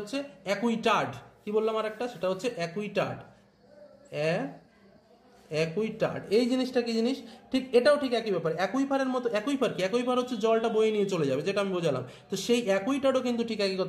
অ্যাকুইটার্ড। কি বললাম আরেকটা? সেটা হচ্ছে অ্যাকুইটার্ড। অ্যাকুইটার্ড এই জিনিসটা কি জিনিস? ঠিক এটাও ঠিক একই ব্যাপার, অ্যাকুইফারের মতো। অ্যাকুইফার কি? অ্যাকুইফার হচ্ছে জলটা বয়ে নিয়ে চলে যাবে, যেটা আমি বোঝালাম। তো সেই অ্যাকুইটার্ডও কিন্তু ঠিক একই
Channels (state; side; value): identical; both; correlation 1.00